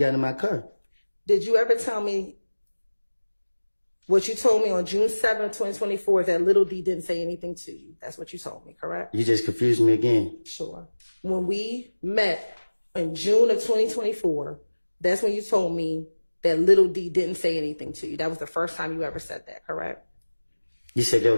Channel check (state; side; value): inverted; both; correlation -1.00